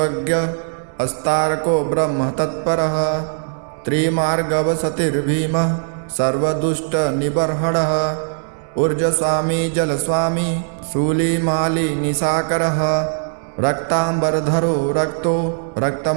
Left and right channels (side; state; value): left; silent; digital silence